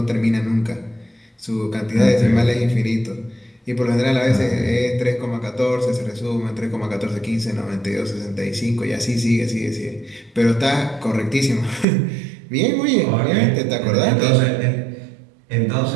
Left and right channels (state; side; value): drops out; left; at 11.9 s